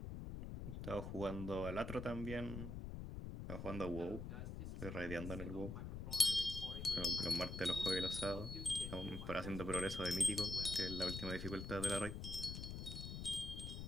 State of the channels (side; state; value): left; noise; rumble, 6 dB below the sound